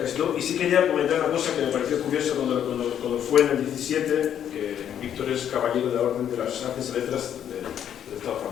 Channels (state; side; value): quieter; right; 9.6 dB